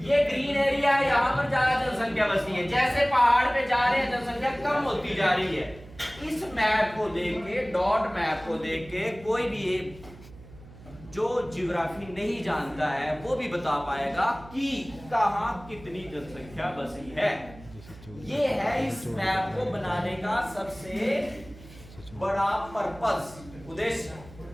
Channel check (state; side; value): noise; right; hum, 19 dB below the sound